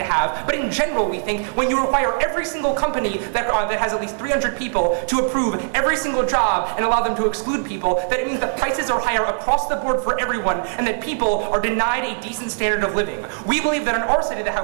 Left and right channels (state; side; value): silent; left; 65 dB below the other